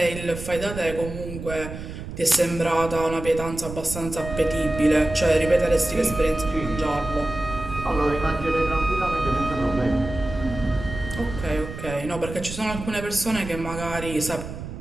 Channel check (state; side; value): noise; right; rumble, 10 dB below the sound